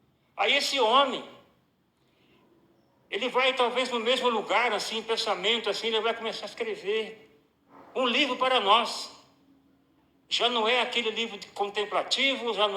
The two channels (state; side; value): identical; both; correlation 1.00